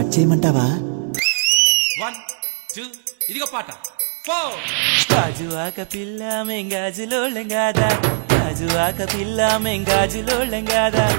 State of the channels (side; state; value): left; silent; 66 dB below the other